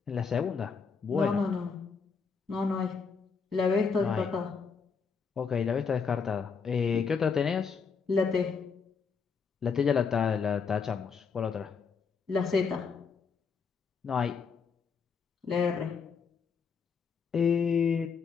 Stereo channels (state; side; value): quieter; right; 5.6 dB